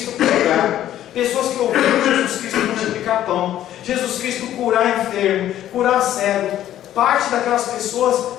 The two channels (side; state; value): right; quieter; 12.2 dB